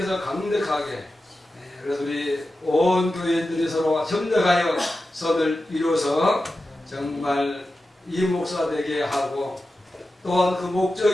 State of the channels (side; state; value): both; normal; correlation 0.92